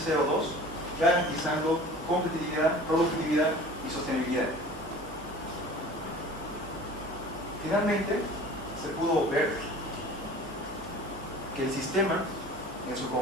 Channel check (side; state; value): both; normal; correlation 0.42